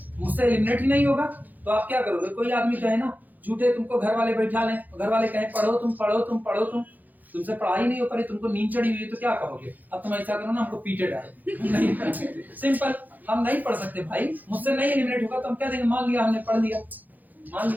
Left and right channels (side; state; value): left; late; 0.083 ms